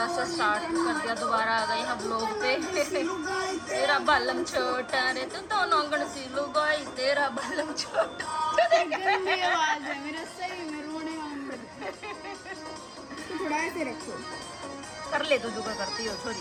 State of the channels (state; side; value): identical; both; correlation 1.00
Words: से स्टार्ट कर दिया, दोबारा आ गए हम ब्लॉग पे। तेरा बालम छोटा रे तो दोनों गण सी लुगाई, तेरा बालम छोटा। गंदी आवाज है मेरा, सही में रोने वाला। थोड़ा ऐसे रखो, कर ले तो जो करती हो